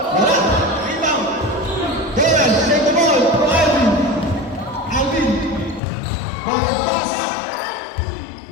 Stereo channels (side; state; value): right; drops out; at 5.8 s